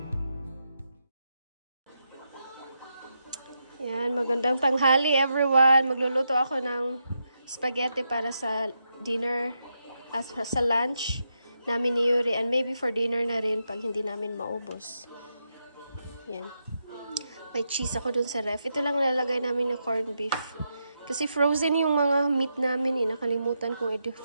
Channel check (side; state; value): both; inverted; correlation -0.84